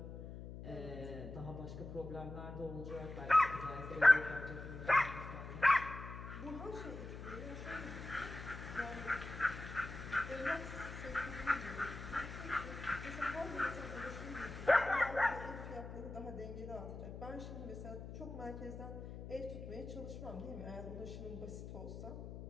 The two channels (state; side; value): noise; left; hum, 10 dB below the sound